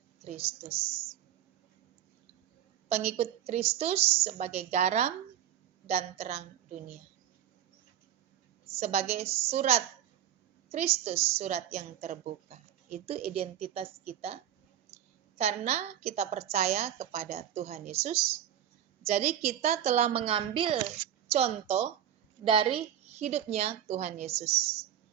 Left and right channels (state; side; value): quieter; left; 10.7 dB